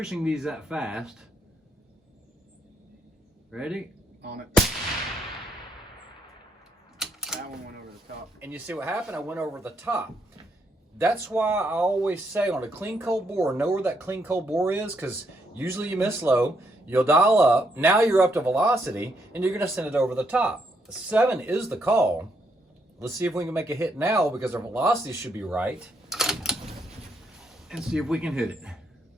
these that fast. Ready? On it. That one went over the top. And you see what happened? I went over the top. That's why I always say on a clean cold bore, know where that clean cold bore is, because usually you miss low, you'll dial up, now you're up to velocity, and you're gonna send it over the top. 7 is the call. Let's see if we can make a hit now, because our velocity should be right. And see if we can hit it.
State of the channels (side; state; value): both; normal; correlation 0.76